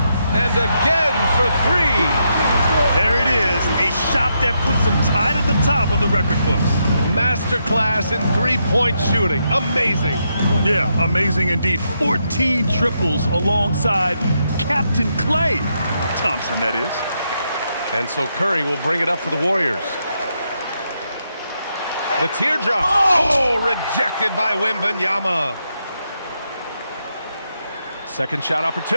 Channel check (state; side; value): inverted; both; correlation -0.81